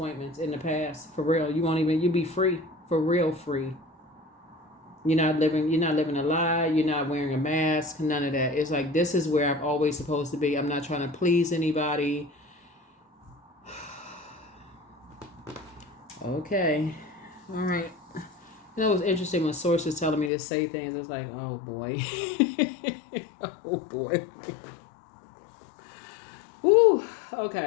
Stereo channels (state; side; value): drops out; right; at 20.3 s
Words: in the past. For real, you'll be free. For real, free. You're not living a lie. You're not wearing a mask. None of that. It's like, this is where I'm always supposed to be. I'm not trying to please anybody. Okay. All right. It was interesting when Source was telling me to say things. It's like, oh boy. Oh boy. Woo.